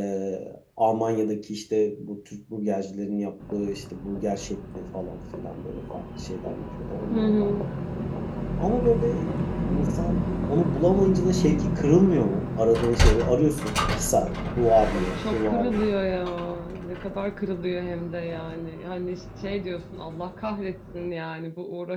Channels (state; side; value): identical; both; correlation 1.00